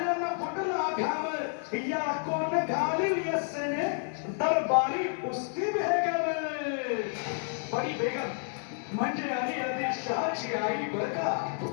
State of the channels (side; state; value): right; silent; 58 dB below the other